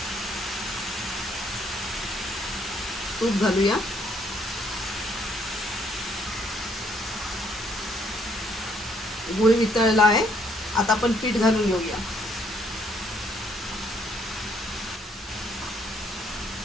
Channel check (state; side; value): normal; both; correlation 0.68